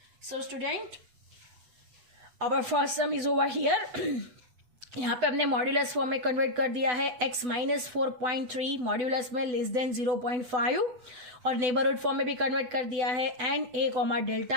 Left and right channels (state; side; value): late; left; 8.0 ms